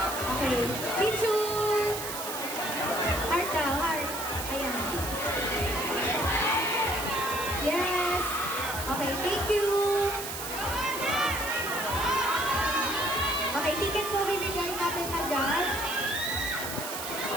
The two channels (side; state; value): right; noise; hiss, 7 dB below the sound